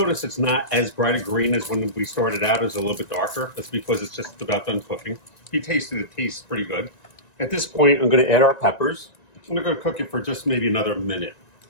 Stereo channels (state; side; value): late; right; 1.9 ms